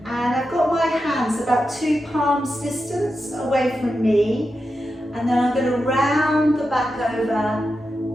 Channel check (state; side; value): normal; both; correlation 0.89